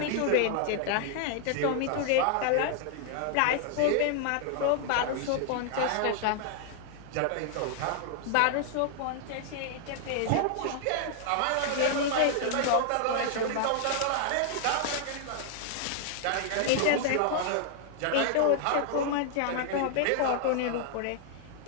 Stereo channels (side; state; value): both; different; correlation 0.00